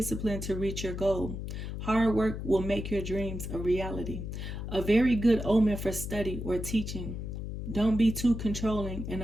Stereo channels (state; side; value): noise; left; hum, 6 dB below the sound